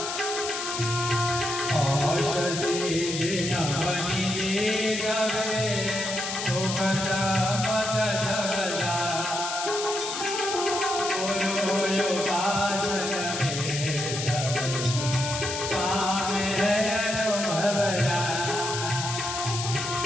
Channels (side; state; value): left; noise; hiss, 4 dB below the sound